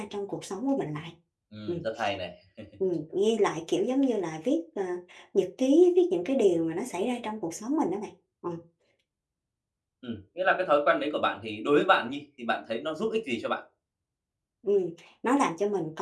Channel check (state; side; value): identical; both; correlation 1.00